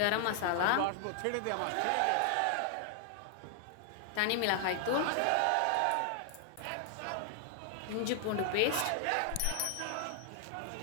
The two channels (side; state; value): both; different; correlation 0.00